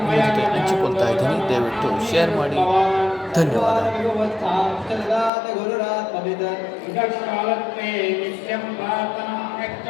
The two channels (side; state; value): right; drops out; at 5.3 s